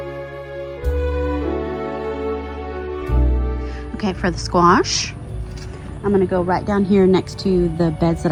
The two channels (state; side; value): identical; both; correlation 1.00